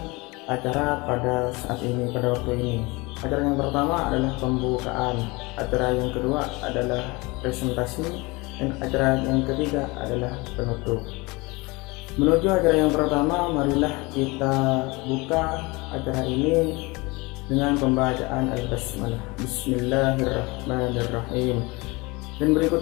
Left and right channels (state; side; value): quieter; right; 24.8 dB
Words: acara pada saat ini, pada waktu ini. Acara yang pertama adalah pembukaan, acara yang kedua adalah presentasi, dan acara yang ketiga adalah penutup. Menuju acara yang pertama, marilah kita buka acara ini dengan pembacaan Al-Basmalah. Bismillahirrahmanirrahim. Dan